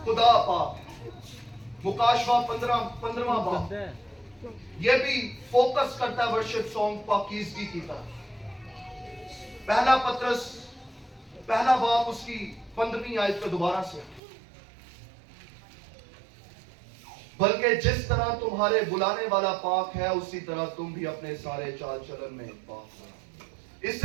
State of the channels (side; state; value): left; drops out; at 14.2 s